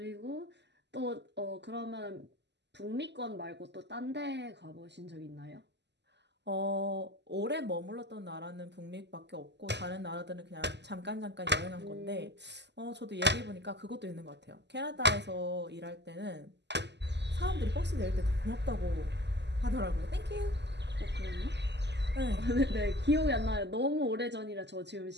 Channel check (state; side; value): late; left; 0.50 ms